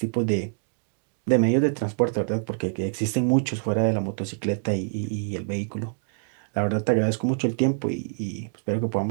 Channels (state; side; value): silent; left; digital silence